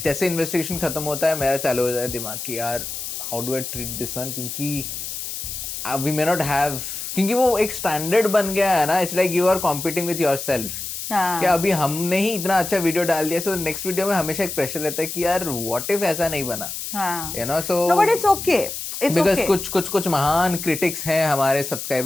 जैसे investigation खत्म होता है, मेरा चालू हो जाता है दिमाग कि यार how do I treat this one, क्योंकि we may not have, क्योंकि वो एक standard बन गया है ना, it's like you are competing with yourself. कि अभी हमने ही इतना अच्छा वीडियो डाल दिया, so नेक्स्ट वीडियो में हमेशा एक प्रेशर रहता है कि यार what if ऐसा नहीं बना, you know, so no, but it's okay, because कुछ महान क्रिटिक्स हैं हमारे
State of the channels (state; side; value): noise; left; hiss, 6 dB below the sound